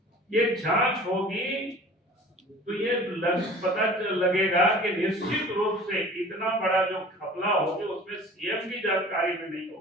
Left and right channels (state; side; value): normal; both; correlation 0.44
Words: ये जांच होगी तो ये पता लगेगा कि निश्चित रूप से इतना बड़ा जो घपला होगी उसमें सीएम की जानकारी में नहीं